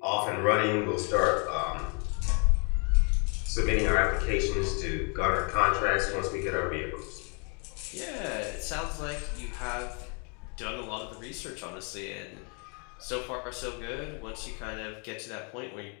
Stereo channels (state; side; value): quieter; right; 36.8 dB